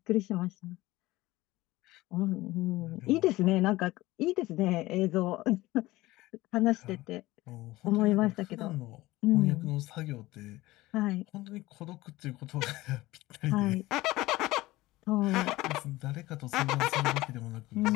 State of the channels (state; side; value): quieter; right; 18.6 dB